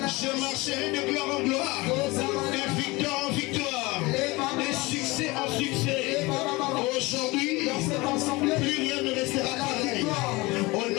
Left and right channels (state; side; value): quieter; right; 22.9 dB